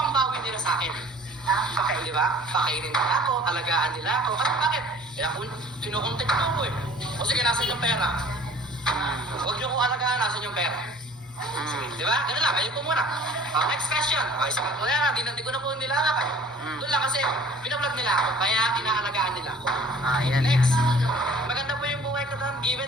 ibabawi nila sa akin. Di ba? Pakainin nila ako, alagaan nila ako. Kasi bakit? Kaya kung kinukontek ko ako eh. O sige, nasan yung pera? Huwag niyo ko alagaan, nasan yung pera? Di ba? Ganun lang, ayun po muna. Next question. Isa pa po yan, di ko na po nilalakay. Doon lang kasi, pinablog nila ako, kaya inaalagaan nila ako. Yan. Next. Maganda po yung buhay ko doon.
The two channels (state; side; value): normal; both; correlation 0.49